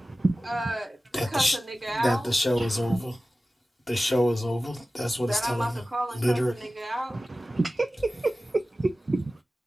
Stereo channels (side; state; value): both; normal; correlation 0.96